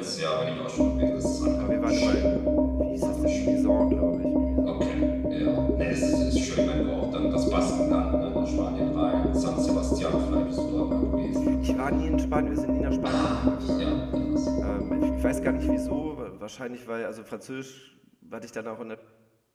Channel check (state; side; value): identical; both; correlation 1.00